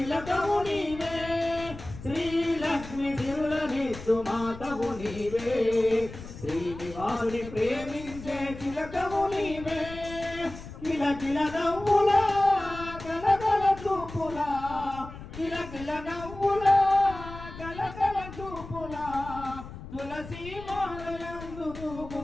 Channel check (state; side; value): noise; left; rumble, 13 dB below the sound